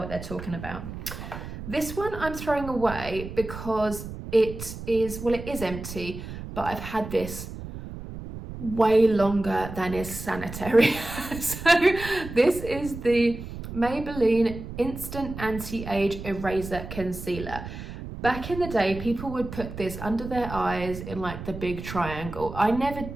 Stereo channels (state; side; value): noise; right; rumble, 10 dB below the sound